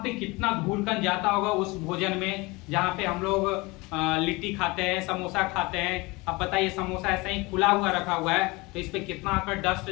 कितना धूलकण जाता होगा उस भोजन में जहाँ पे हम लोग लिट्टी खाते हैं, समोसा खाते हैं। अब बताइए, समोसा ऐसा ही खुला हुआ रखा हुआ है तो इस पे कितना आकर डस्ट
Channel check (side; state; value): right; quieter; 24.1 dB